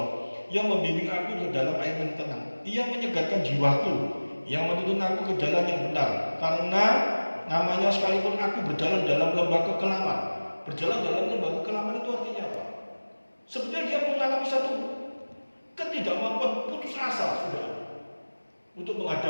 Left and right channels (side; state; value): both; inverted; correlation -1.00